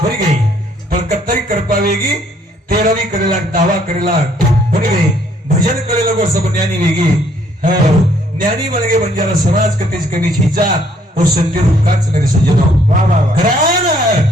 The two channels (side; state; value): both; normal; correlation 0.65